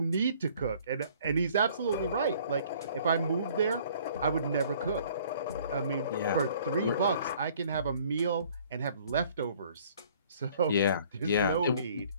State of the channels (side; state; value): both; inverted; correlation -0.57